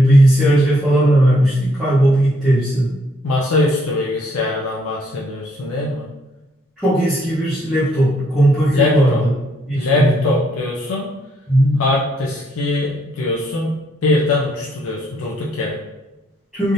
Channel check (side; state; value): both; normal; correlation 0.71